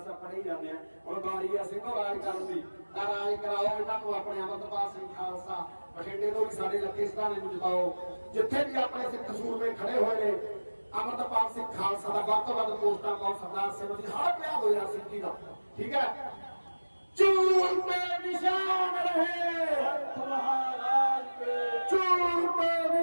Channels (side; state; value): both; inverted; correlation -1.00